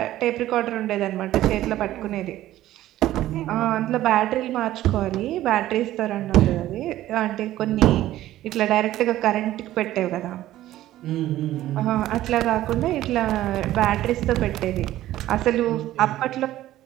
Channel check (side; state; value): left; quieter; 14.3 dB